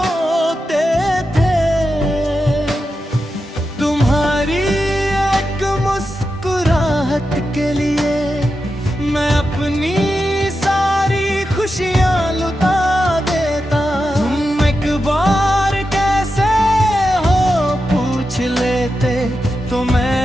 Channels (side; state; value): both; normal; correlation 0.89